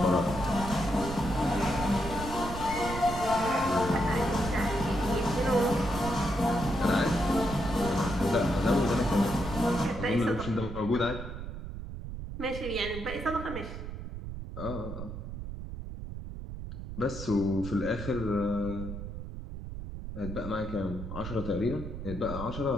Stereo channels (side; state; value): right; noise; rumble, 8 dB below the sound